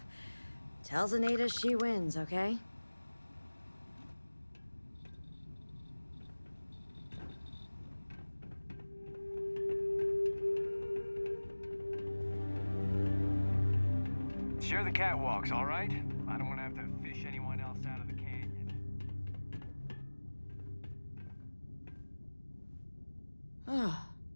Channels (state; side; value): inverted; both; correlation -1.00